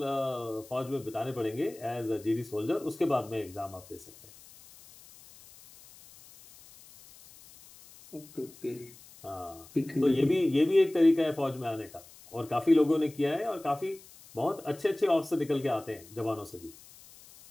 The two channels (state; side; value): noise; left; hiss, 22 dB below the sound